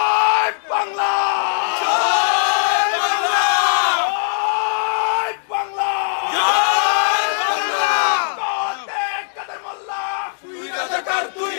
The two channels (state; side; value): silent; right; digital silence